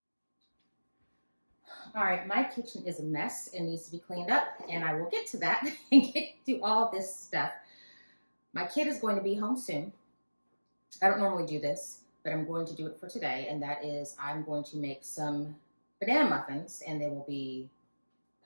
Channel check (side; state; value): both; inverted; correlation -1.00